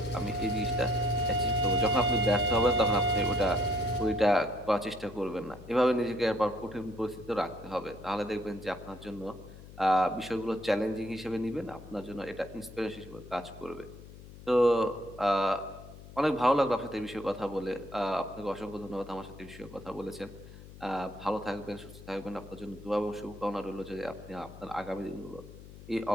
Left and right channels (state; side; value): noise; left; hum, 17 dB below the sound